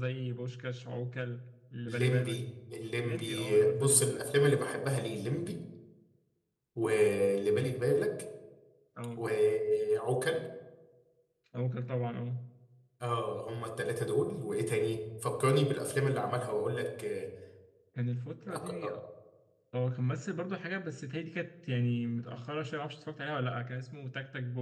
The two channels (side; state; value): both; identical; correlation 1.00